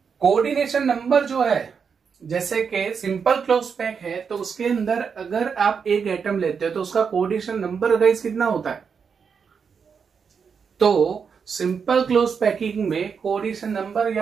कोऑर्डिनेशन नंबर जो है, जैसे कि सिंपल क्लोज पैक है तो उसके अंदर अगर आप एक आइटम लेते हो तो उसका कोऑर्डिनेशन नंबर गाइस कितना होता है. तो सिंपल क्लोज पैकिंग में कोऑर्डिनेशन नंबर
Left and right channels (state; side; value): quieter; left; 6.2 dB